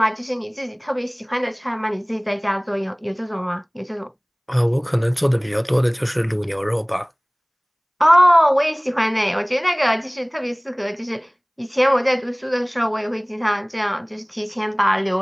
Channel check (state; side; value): identical; both; correlation 1.00